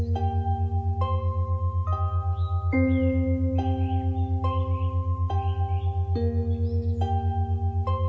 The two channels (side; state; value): both; identical; correlation 1.00